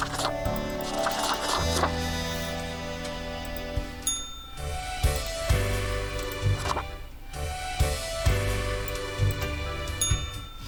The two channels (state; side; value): identical; both; correlation 1.00